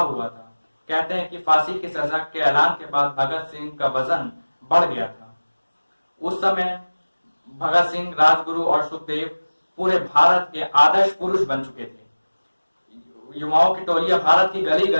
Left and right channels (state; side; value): inverted; both; correlation -1.00